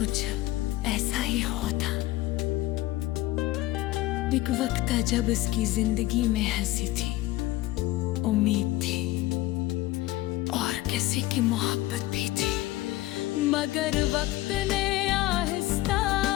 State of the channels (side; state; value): right; quieter; 17.3 dB